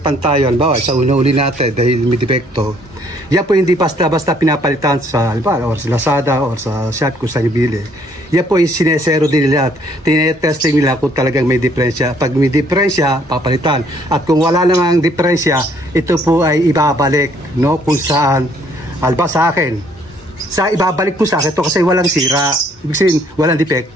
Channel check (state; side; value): normal; both; correlation 0.64